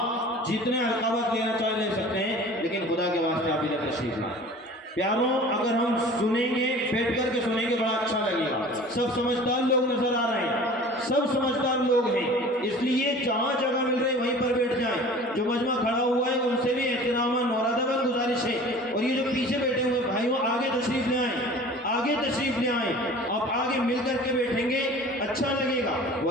جتنے القابات لینا چاہیں لے سکتے ہیں، لیکن خدا کے واسطے آپ ادھر تشریف لائیں۔ پیاروں، اگر ہم سنیں گے، بیٹھ کر کے سنیں گے، بڑا اچھا لگے گا۔ سب سمجھدار لوگ نظر آ رہے ہیں، سب سمجھدار لوگ ہیں، اس لیے جہاں جگہ مل رہی وہیں پر بیٹھ جائیں۔ جو مجمع کھڑا ہوا ہے ان سے بھی احترام اور ادب گزارش ہے، اور یہ جو پیچھے بیٹھے ہوئے بھائیوں آگے تشریف لے آئیں، آگے تشریف لے آئیں۔ آپ آگے مل کر کے بیٹھیں گے اچھا لگے گا،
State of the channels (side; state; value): both; normal; correlation 0.43